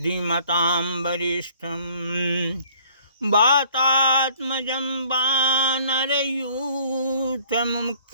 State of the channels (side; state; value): both; inverted; correlation -0.57